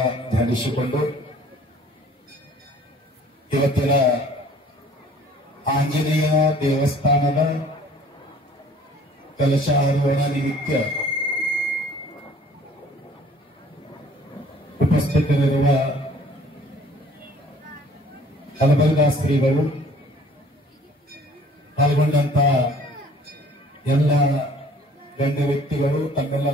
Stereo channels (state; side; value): normal; both; correlation 0.53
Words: ಧ್ಯಾನಿಸಿಕೊಂಡು ಇವತ್ತಿನ ಆಂಜನೇಯ ದೇವಸ್ಥಾನದ ಕಲಶಾರೋಹಣ ನಿಮಿತ್ತ ಉಪಸ್ಥಿತರಿರುವ ಕಲಬರ್ಗ ಶ್ರೀಗಳು ಪಾಲ್ಗೊಂಡಂತ ಎಲ್ಲ ಗಣ್ಯ ವ್ಯಕ್ತಿಗಳು